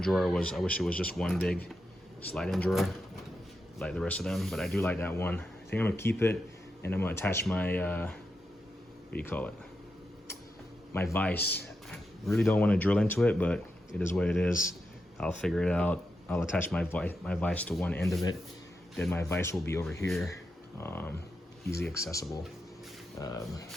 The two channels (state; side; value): normal; both; correlation 0.87